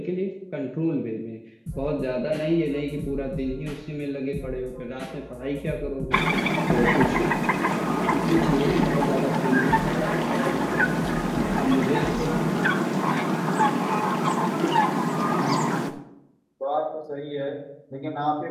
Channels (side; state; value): both; identical; correlation 1.00